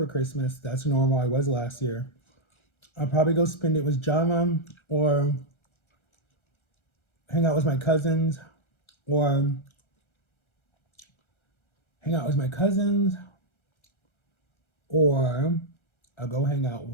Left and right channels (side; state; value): right; late; 1.3 ms